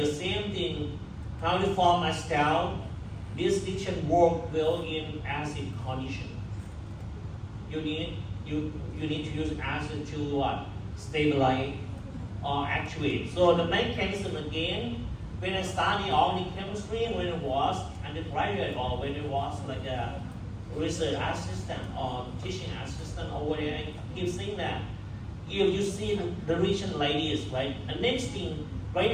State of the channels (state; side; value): identical; both; correlation 1.00